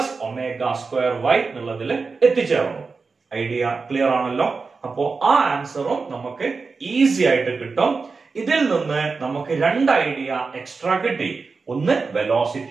omega square y എന്നുള്ളതിൽ എത്തിച്ചേർന്നു. ഐഡിയ ക്ലിയർ ആണല്ലോ? അപ്പോ ആ ആൻസറും നമുക്ക് ഈസി ആയിട്ട് കിട്ടും. ഇതിൽ നിന്ന് നമുക്ക് രണ്ട് ഐഡിയ എക്സ്ട്രാ കിട്ടി. ഒന്ന്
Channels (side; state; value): left; quieter; 4.5 dB